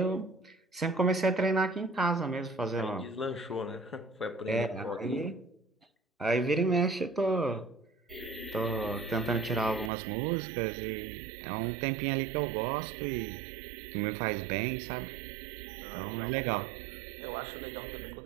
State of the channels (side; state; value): left; drops out; at 9.9 s